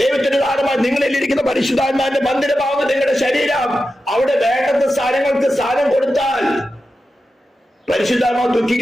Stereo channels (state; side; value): normal; both; correlation 0.91